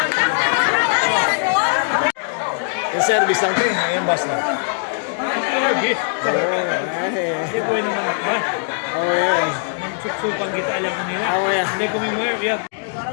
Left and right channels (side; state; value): right; silent; digital silence